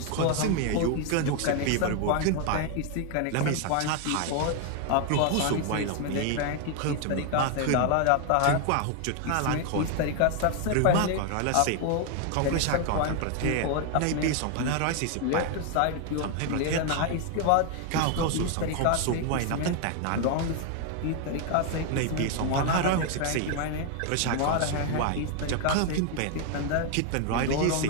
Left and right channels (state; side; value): different; both; correlation 0.01